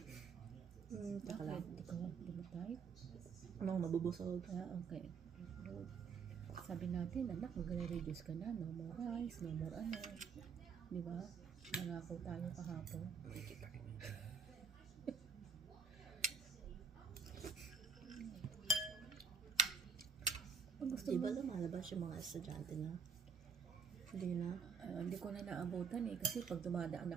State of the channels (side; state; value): left; quieter; 5.9 dB